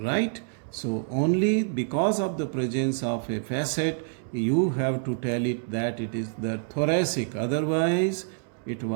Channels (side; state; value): left; silent; digital silence